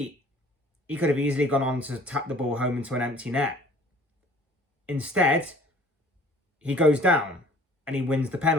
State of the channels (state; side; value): normal; both; correlation 0.52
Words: he could have easily gone on to tap the ball home into an empty net. Instead, he goes down and he wins the